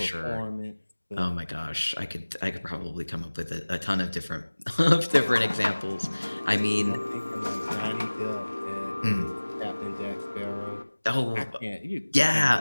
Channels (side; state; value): both; inverted; correlation -1.00